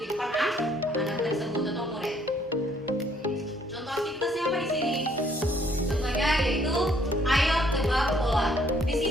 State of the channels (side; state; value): both; normal; correlation 0.65